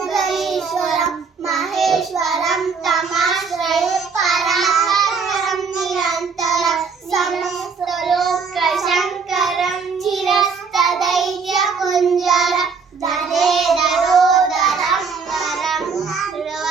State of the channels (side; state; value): left; quieter; 5.3 dB